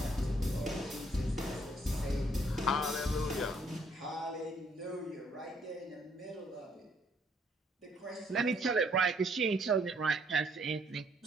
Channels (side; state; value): both; normal; correlation 0.67